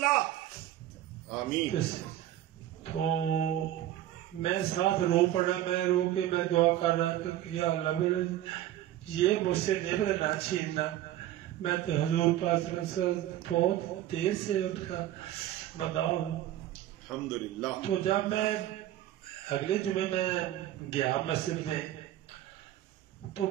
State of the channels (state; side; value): quieter; left; 13.2 dB